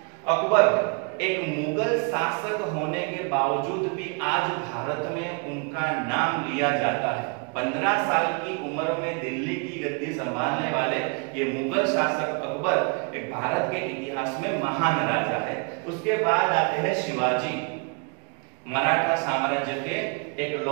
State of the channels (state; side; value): quieter; left; 34.6 dB